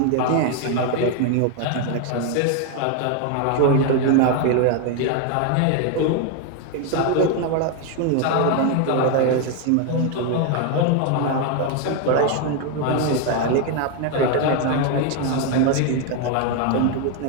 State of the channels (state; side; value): different; both; correlation 0.01